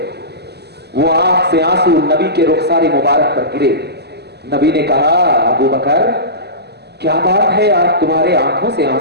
وہ آنکھ سے آنسو نبی کے رخسار مبارک پر گرے. نبی نے کہا ابوبکر کیا بات ہے آج تمہارے آنکھوں سے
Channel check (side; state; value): left; late; 0.48 ms